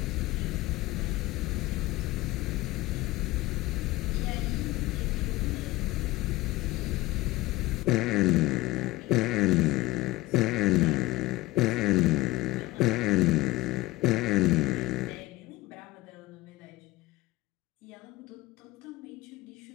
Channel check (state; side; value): quieter; right; 19.2 dB